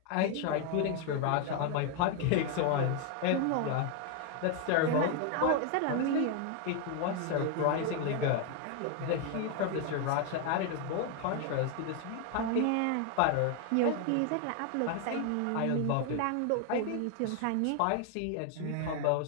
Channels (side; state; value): both; different; correlation 0.01